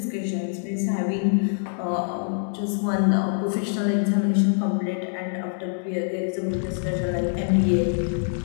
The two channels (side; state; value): right; silent; digital silence